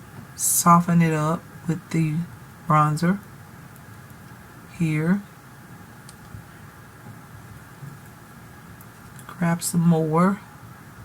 soften it up with the bronzer here. Grab some more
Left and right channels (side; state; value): both; identical; correlation 1.00